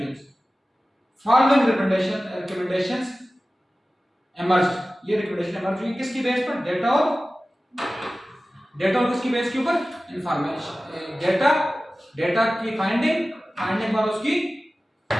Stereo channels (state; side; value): normal; both; correlation 0.96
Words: following recommendations emerged. ये रिकमेंडेशन इमर्ज हुई किसकी बेस पर? डेटा और किसकी बेस के ऊपर? इंफॉर्मेशन, डेटा की फाइंडिंग और उसकी